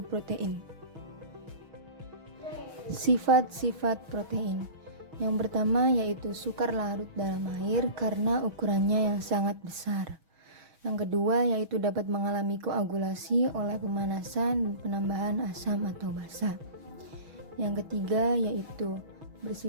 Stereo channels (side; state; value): left; late; 6.3 ms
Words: protein. Sifat-sifat protein. Yang pertama yaitu sukar larut dalam air karena ukurannya yang sangat besar. Yang kedua yaitu dapat mengalami koagulasi oleh pemanasan dan penambahan asam atau basa. Yang ketiga yaitu